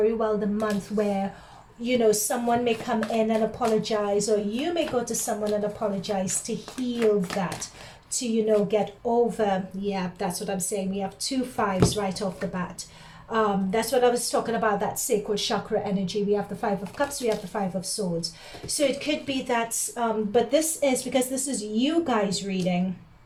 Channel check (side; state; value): both; identical; correlation 1.00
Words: well the month where, you know, someone may come in and apologize, or you may go to someone and apologize to heal that, to, you know, get over. Yeah, that's what I'm saying. We have 2 5s right off the bat. That's what I was talking about, that sacral chakra energy. We have the 5 of Cups, we have the 5 of Swords. So it could be that, but this is, because this is you guys reading,